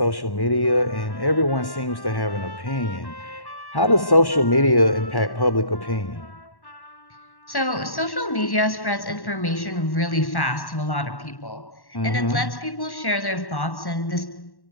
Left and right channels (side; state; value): right; late; 1.1 ms